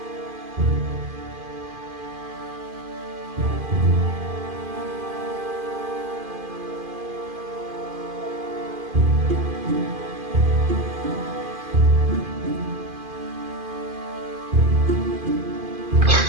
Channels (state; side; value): late; left; 2.5 ms